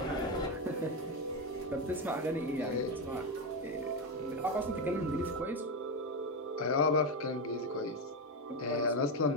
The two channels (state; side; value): normal; both; correlation 0.10